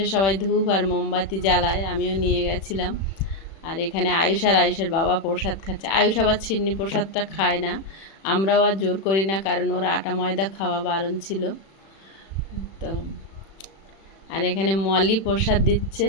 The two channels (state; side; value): late; right; 36 ms